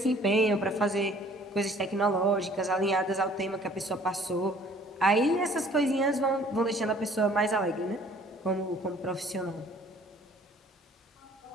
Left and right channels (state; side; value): normal; both; correlation 0.55